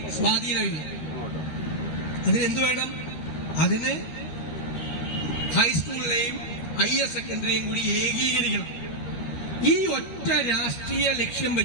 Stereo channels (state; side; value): late; right; 13 ms